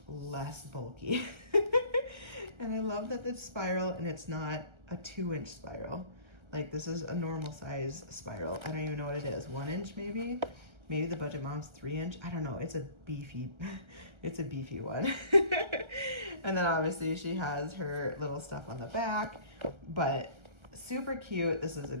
less bulky. And I love that it's spiral and it's not a 2-inch spiral. Like, this is a normal size spiral. I don't even know what it is. 1 inch maybe? Maybe the budget mom's 3-inch. I don't know. It's a beefy one. And then obviously she has her little stuff on the back, but super cute. This is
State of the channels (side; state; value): left; late; 1.3 ms